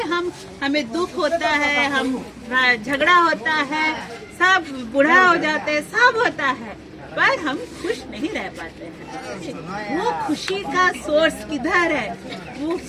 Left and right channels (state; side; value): identical; both; correlation 1.00